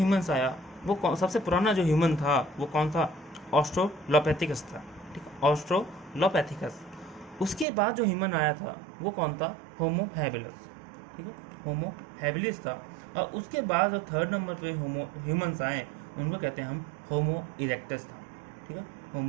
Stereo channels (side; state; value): left; drops out; at 7.7 s